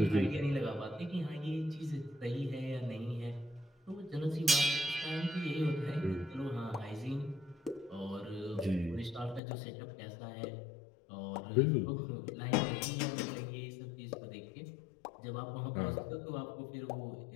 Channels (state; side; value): drops out; right; at 9.4 s